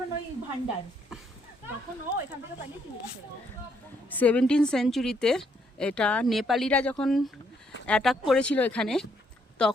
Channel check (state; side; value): normal; both; correlation 0.72